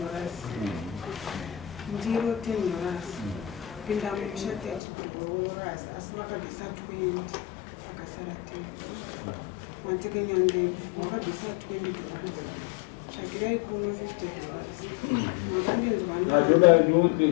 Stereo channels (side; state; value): right; drops out; at 4.8 s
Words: ndiro $10, pinda mushati $12, asi vakabvisa 20 akasara 10. Matekenyande wakabvisa $20, tsvakirai kuno $50. Zvatoda